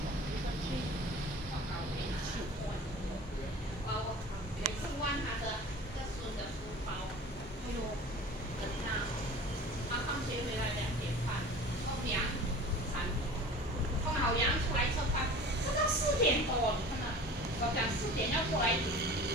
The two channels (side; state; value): both; normal; correlation 0.40